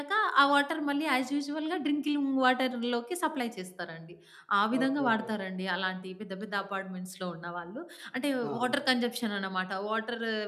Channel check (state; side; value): identical; both; correlation 1.00